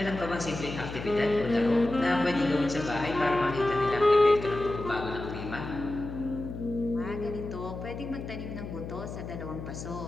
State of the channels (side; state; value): left; noise; hum, 9 dB below the sound